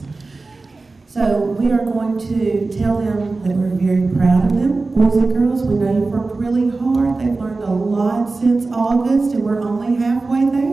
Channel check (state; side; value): quieter; left; 3.6 dB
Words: So we are going to tell them that we're very proud of them. Boys and girls, we know you've worked really hard. They've learned a lot since August, and we're only halfway